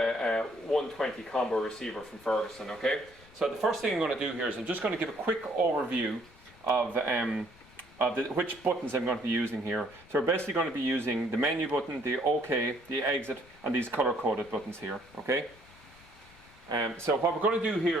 120 combo receiver from Ferguson, okay? So the first thing I'm going to do here is I'm just going to give a quick overview of which buttons I'm going to be using here. So we're basically going to be using the menu button, the OK, the exit and these color-coded buttons here, okay? So what we're going to do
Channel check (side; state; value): left; noise; rumble, 25 dB below the sound